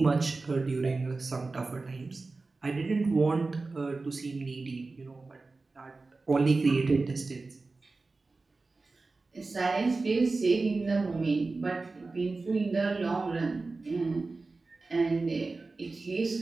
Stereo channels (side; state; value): left; quieter; 3.7 dB